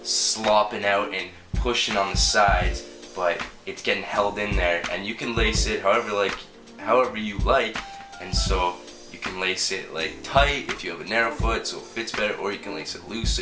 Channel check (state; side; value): identical; both; correlation 1.00